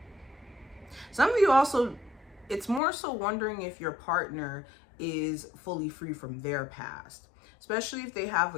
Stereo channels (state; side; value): drops out; right; at 2.8 s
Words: Some of you also, it's more so wondering if your partner is fully free from their past, especially if they have